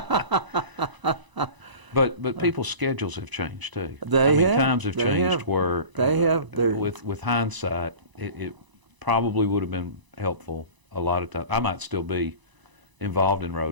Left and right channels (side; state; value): left; late; 1.0 ms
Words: But people's schedules have changed too. They have. Times have They changed have. where They have. with hindsight, it probably would have been helpful a lot of times. I might still be involved in